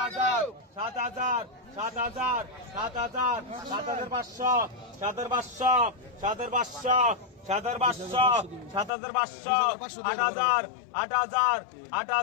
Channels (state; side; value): drops out; right; at 8.9 s